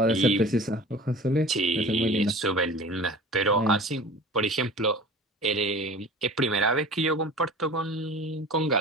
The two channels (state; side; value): normal; both; correlation 0.40